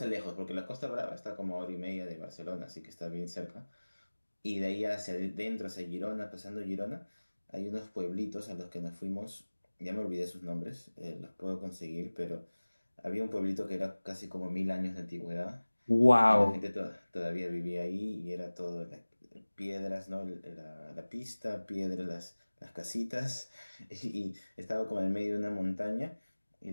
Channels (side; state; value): both; inverted; correlation -1.00